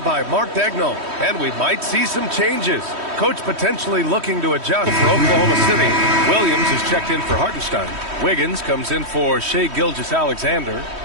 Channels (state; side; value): late; left; 3.1 ms